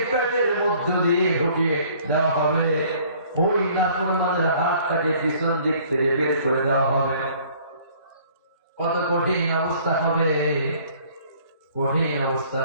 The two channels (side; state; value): both; inverted; correlation -0.56